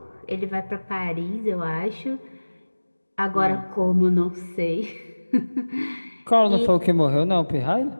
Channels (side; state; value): both; inverted; correlation -1.00